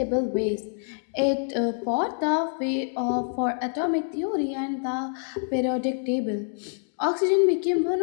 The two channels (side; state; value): right; silent; digital silence